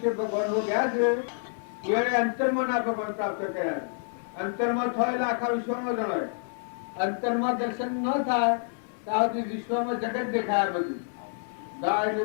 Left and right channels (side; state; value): right; silent; digital silence